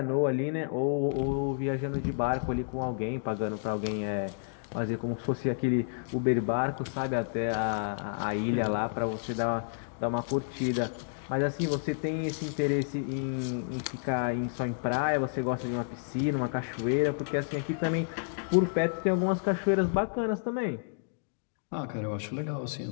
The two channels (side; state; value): right; silent; digital silence